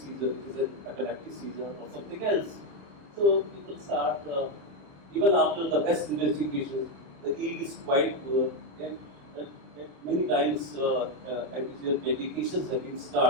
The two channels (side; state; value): left; late; 27 ms